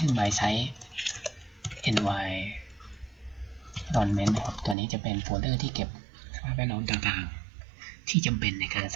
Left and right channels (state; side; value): drops out; left; at 4.8 s